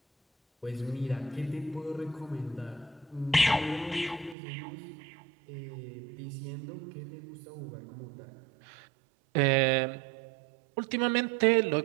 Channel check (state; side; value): drops out; left; at 4.4 s